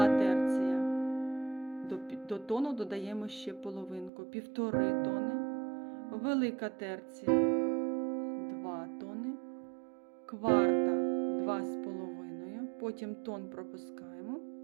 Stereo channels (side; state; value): left; drops out; at 4.1 s